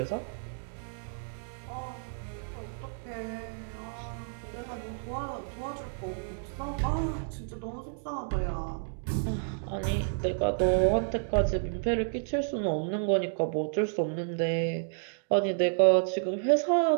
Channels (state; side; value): silent; left; digital silence